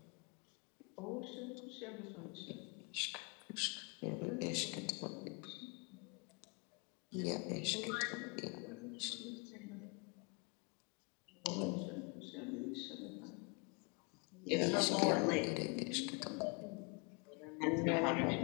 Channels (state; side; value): quieter; right; 32.8 dB